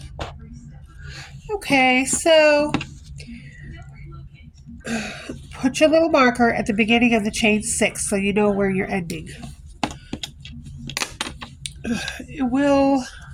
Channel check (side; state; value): both; identical; correlation 1.00